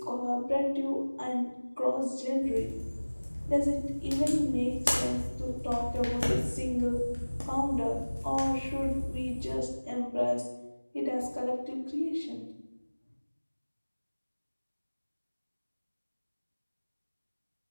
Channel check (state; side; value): inverted; both; correlation -1.00